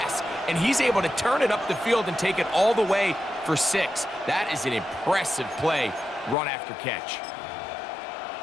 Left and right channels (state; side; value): drops out; right; at 6.4 s